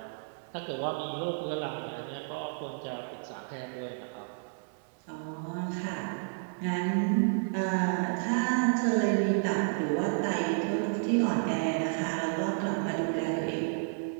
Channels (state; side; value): silent; left; digital silence